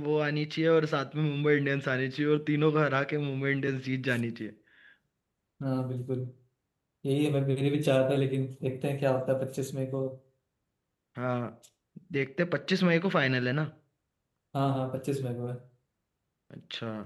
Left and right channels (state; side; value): identical; both; correlation 1.00